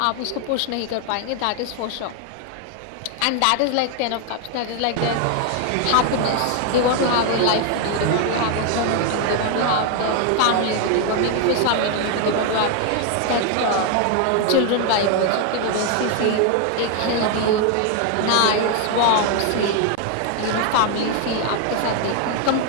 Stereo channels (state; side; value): different; both; correlation 0.01